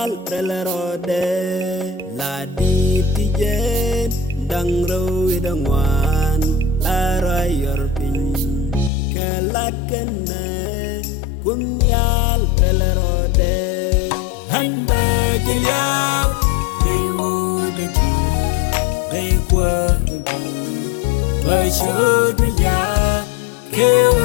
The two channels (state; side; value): drops out; right; at 8.9 s